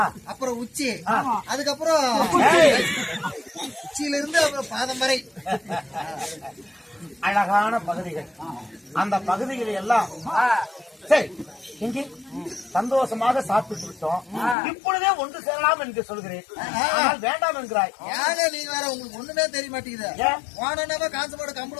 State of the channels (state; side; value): drops out; right; at 14.6 s